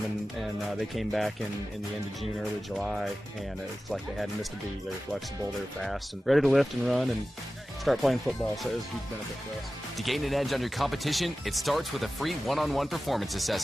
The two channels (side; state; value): both; normal; correlation 0.95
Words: and they came back in the end of June, early July, and it's like they hadn't missed a beat. They were flexible, they were fast, and ready to lift and run and start playing football, so it was a huge benefit for us. To gain an edge on your competition, it starts with a free one-on-one performance